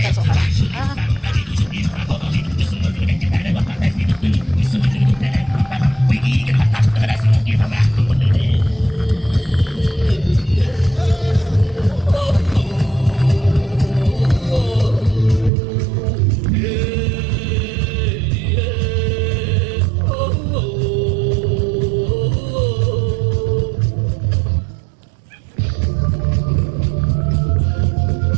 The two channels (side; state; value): left; drops out; at 15.5 s